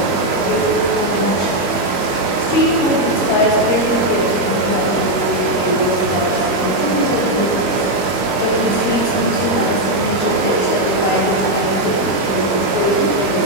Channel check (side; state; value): right; late; 21 ms